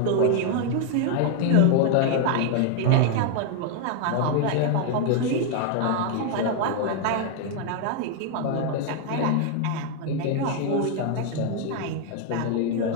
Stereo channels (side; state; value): both; different; correlation 0.00